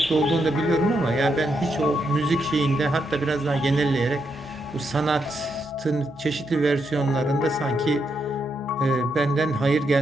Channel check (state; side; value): normal; both; correlation 0.80